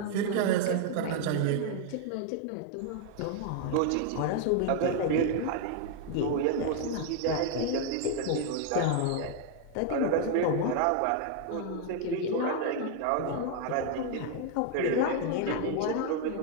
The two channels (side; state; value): both; different; correlation 0.00